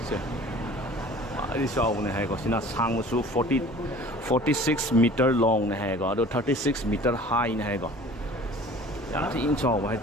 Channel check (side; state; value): both; normal; correlation 0.46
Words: đi sau này hay có xin là sang một số 46 meter long này hay có, 36 meter high này hay có, giá thì in sau hay